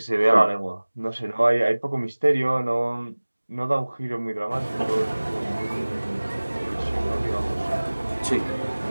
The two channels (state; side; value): inverted; both; correlation -1.00